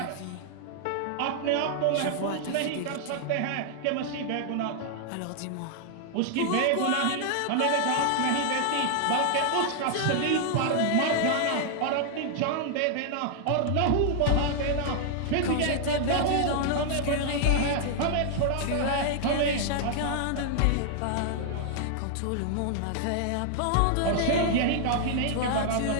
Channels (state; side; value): different; both; correlation 0.00